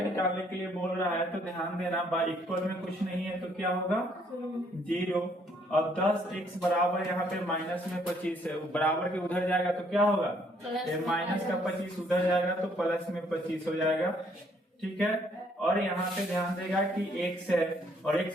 के लिए बोल रहा है। तो ध्यान देना बाई इक्वल में कुछ नहीं है तो क्या होगा? 0। अब 10x बराबर यहाँ पे माइनस में 25 है, बराबर के उधर जाएगा तो क्या होगा? माइनस का 25 उधर जाएगा तो प्लस में 25 हो जाएगा। ठीक है। और यहाँ पे ध्यान देगा कि x है और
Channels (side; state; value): both; normal; correlation 0.66